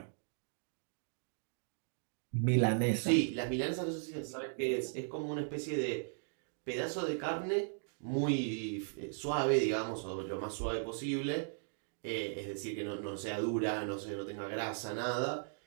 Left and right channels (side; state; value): left; silent; digital silence